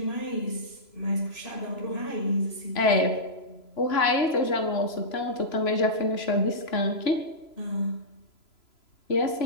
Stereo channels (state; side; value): late; right; 3.0 ms